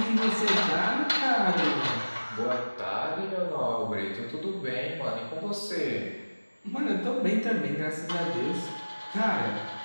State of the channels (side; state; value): both; inverted; correlation -1.00